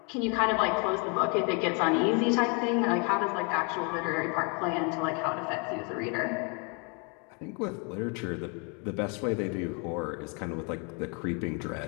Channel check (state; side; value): quieter; right; 34.9 dB